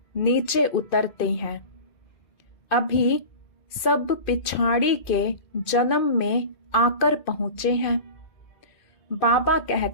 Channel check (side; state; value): right; late; 2.5 ms